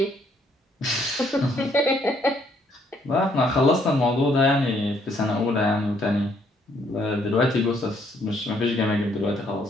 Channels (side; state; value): both; normal; correlation 0.68